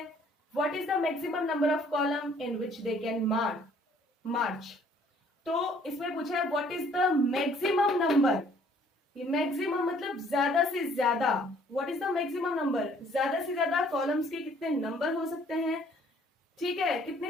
What is the maximum number of column in which they can march? तो इसमें पूछा है what is the maximum number। ये मैक्सिमम मतलब ज्यादा से ज्यादा, what is the maximum number, ज्यादा से ज्यादा कॉलम्स के कितने नंबर हो सकते हैं, ठीक है, कितनी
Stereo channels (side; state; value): both; normal; correlation 0.60